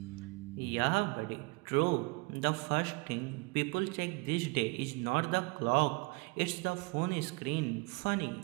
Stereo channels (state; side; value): quieter; left; 28.2 dB